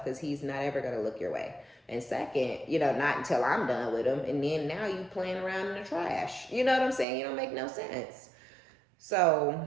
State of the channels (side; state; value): left; drops out; at 7.1 s